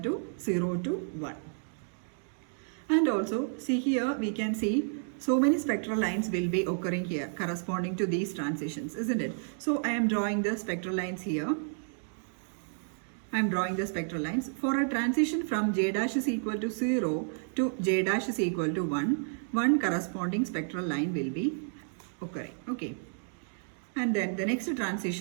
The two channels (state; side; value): silent; left; digital silence